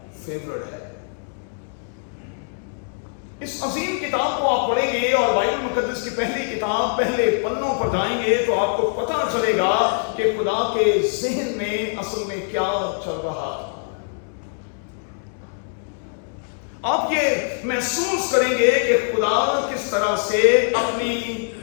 فیورٹ ہے۔ اس عظیم کتاب کو آپ پڑھیں گے اور بائبل مقدس کی پہلی کتاب پہلے پنوں پر جائیں گے تو آپ کو پتہ چلے گا کہ خدا کے ذہن میں اصل میں کیا چل رہا ہے۔ آپ یہ محسوس کریں گے کہ خدا کس طرح سے اپنی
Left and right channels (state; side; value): silent; right; digital silence